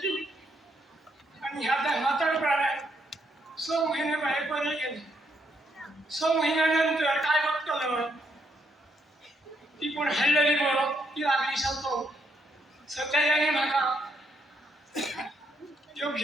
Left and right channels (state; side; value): normal; both; correlation 0.75